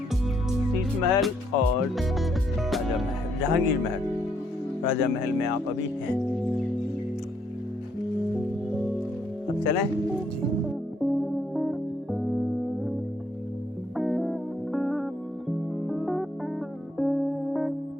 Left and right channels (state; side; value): normal; both; correlation 0.71